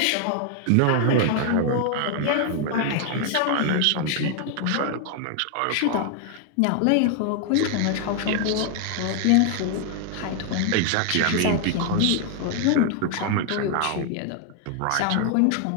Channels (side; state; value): both; different; correlation 0.00